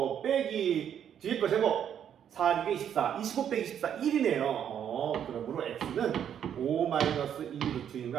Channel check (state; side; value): quieter; left; 9.1 dB